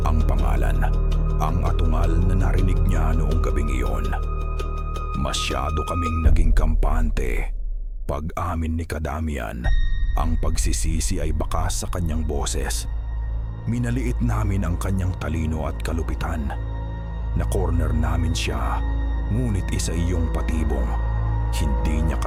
Ang pangalan, ang atungal na narinig niya noong gabing iyon. Masyado kaming naging kampante." Pag-amin ni Ka Damian, ang pagsisisi ay bakas sa kanyang boses. "Minaliit namin ang kanyang talino at kalupitan. Na-corner namin siya. Ngunit isa iyong patibong. Hindi niya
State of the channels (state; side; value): identical; both; correlation 1.00